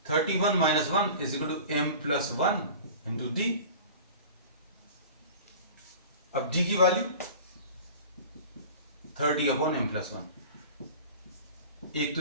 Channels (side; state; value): both; inverted; correlation -0.40